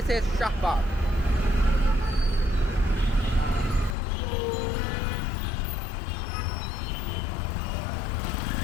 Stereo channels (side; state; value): right; drops out; at 4.0 s